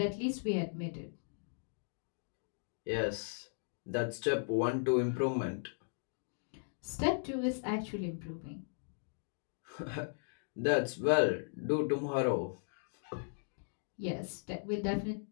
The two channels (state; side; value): silent; right; digital silence